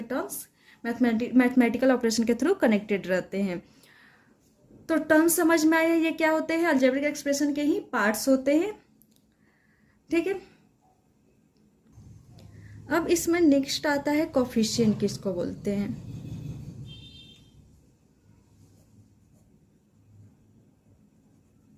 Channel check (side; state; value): both; identical; correlation 1.00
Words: टर्म्स मैथमेटिकल ऑपरेशन के थ्रू कनेक्टेड रहते हैं। तो टर्म्स समझ में आया ये क्या होते हैं, अलजेब्रिक एक्सप्रेशन के ही पार्ट्स होते हैं। ठीक है, अब इसमें नेक्स्ट आता है कोफिशिएंट किसको बोलते हैं।